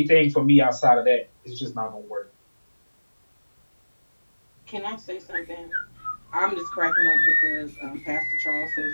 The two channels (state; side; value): inverted; both; correlation -1.00